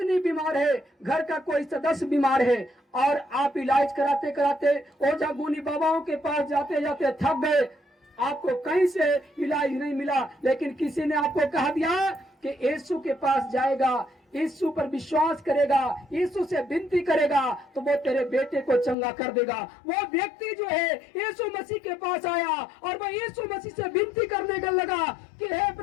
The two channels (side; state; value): right; drops out; at 18.9 s